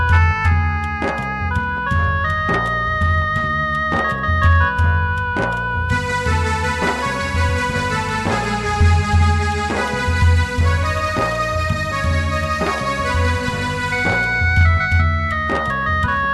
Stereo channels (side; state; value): both; identical; correlation 1.00